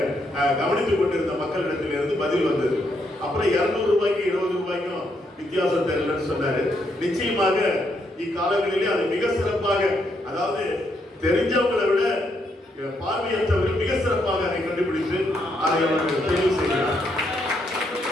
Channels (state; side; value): normal; both; correlation 0.76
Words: கவனித்துக் கொண்டிருந்த மக்களிடத்திலிருந்து பதில் வந்தது. அப்புறம் 200 ரூபாய்க்கு 20 ரூபாய்க்கும் வித்தியாசம் தெரியலன்னு சொன்னாரு. நிச்சயமாக இக்காலங்களிலே அது மிக சிறப்பாக, அதாவது தெரிஞ்சவங்களை விட பார்வையற்றவர்கள் மிக சிறப்பாக அதை கண்டுபிடித்து அதை அவர்கள் தெரிவு செய்கிறார்.